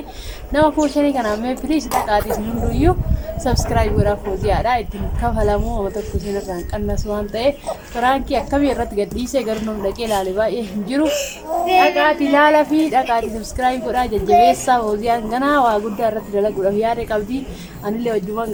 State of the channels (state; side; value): identical; both; correlation 1.00